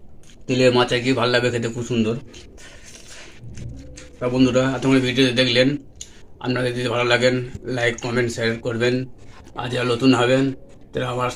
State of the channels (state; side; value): identical; both; correlation 1.00